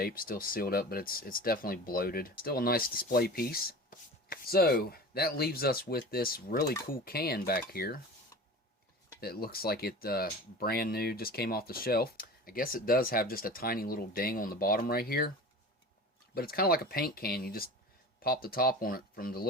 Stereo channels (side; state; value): both; normal; correlation 0.35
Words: Still sealed up, but it's definitely bloated. Still a nice display piece. So that leaves us with this really cool can back here. That looks like it brand new, just came off the shelf. I guess it does have just a tiny little ding on the bottom right here. But it's kind of like a paint can. You just pop the top on it from the